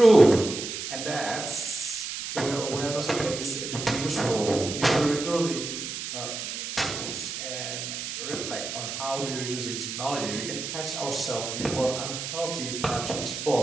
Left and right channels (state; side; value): noise; right; hiss, 6 dB below the sound